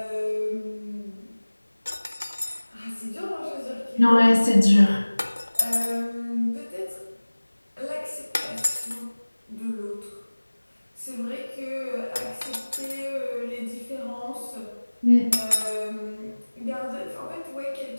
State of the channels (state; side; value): inverted; both; correlation -1.00